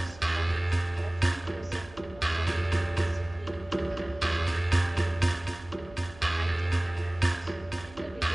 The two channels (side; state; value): right; noise; hum, 21 dB below the sound